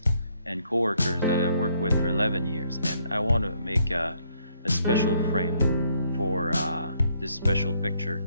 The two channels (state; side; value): inverted; both; correlation -0.69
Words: and coworkers that I've worked with for 11 years, and I want to make a special frame for this special picture